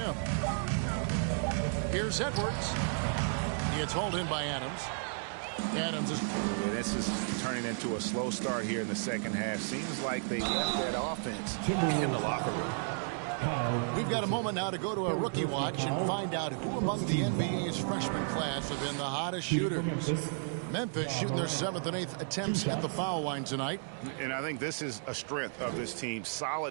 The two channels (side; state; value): left; silent; digital silence